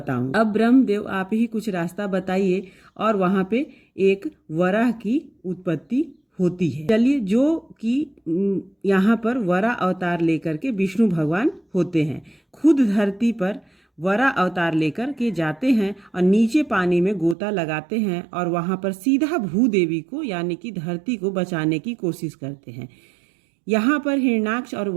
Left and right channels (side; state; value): left; drops out; at 17.4 s